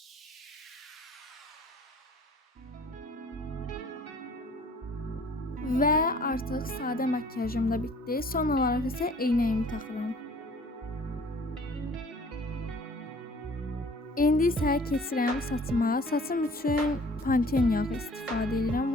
Və artıq sadə makyajım da bitdi. Son olaraq isə eynəyimi taxıram. İndi isə keçirəm saçıma. Saçım üçün Pantene yağı istifadə edirəm.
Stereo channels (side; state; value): both; normal; correlation 0.52